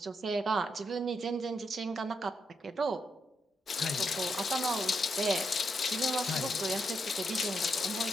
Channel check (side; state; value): both; normal; correlation 0.80